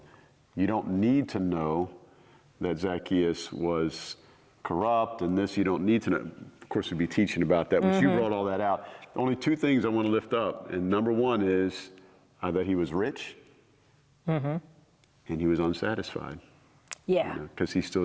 don't need to know that Zacchaeus was corrupt and this, you don't need to know. Of course, we'd be teaching about that, but you brought all that out. Only two things I want to lift up. And number one is that he was rich and he was unsatisfied. Yeah. Because he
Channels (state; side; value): identical; both; correlation 1.00